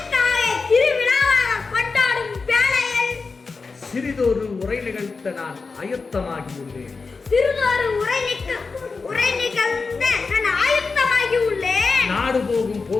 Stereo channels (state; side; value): quieter; right; 4.4 dB